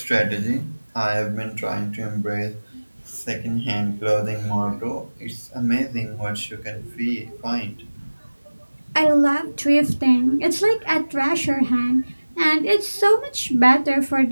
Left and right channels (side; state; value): both; inverted; correlation -1.00